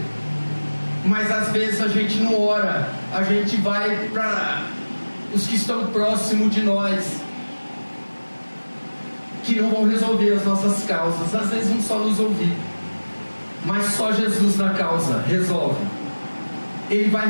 Mas às vezes a gente não ora. A gente vai para os que estão próximos de nós, que não vão resolver as nossas causas. Às vezes vão só nos ouvir, mas só Jesus na causa resolve. Ele vai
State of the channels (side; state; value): both; inverted; correlation -1.00